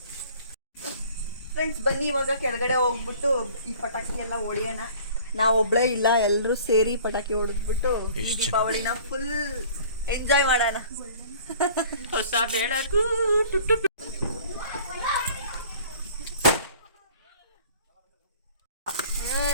ಫ್ರೆಂಡ್ಸ್, ಬನ್ನಿ ಇವಾಗ ಕೆಳಗಡೆ ಹೋಗ್ಬಿಟ್ಟು ಈ ಪಟಾಕಿ ಎಲ್ಲ ಹೊಡಿಯೋಣ. ನಾವು ಒಬ್ಳೇ ಇಲ್ಲ, ಎಲ್ಲರೂ ಸೇರಿ ಪಟಾಕಿ ಹೊಡೆದ್ಬಿಟ್ಟು ಈ ದೀಪಾವಳಿನ ಫುಲ್ ಎಂಜಾಯ್ ಮಾಡೋಣ. ಹೊಸ ಬೆಳಕು.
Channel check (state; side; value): inverted; both; correlation -0.49